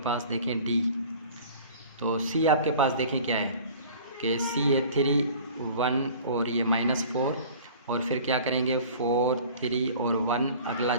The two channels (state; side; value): inverted; both; correlation -0.45